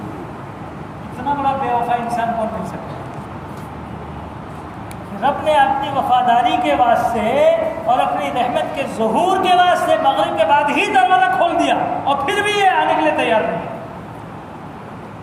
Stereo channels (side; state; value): both; identical; correlation 1.00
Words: اتنا بڑا بے وفا انسان کون مل سکتا ہے؟ رب نے اپنی وفاداری کے واسطے اور اپنی رحمت کے ظہور کے واسطے مغرب کے بعد ہی دروازہ کھول دیا، اور پھر بھی یہ آنے کے لیے تیار نہیں۔